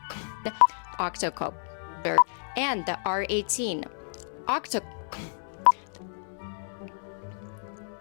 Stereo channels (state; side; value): silent; right; 58 dB below the other